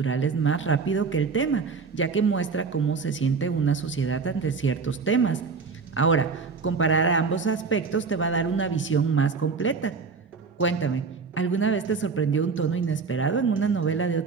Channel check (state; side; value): quieter; left; 5.0 dB